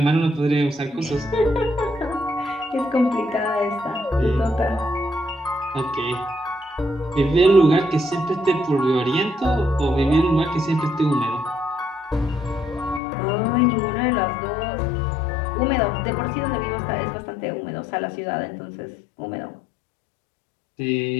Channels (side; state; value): right; drops out; at 13.0 s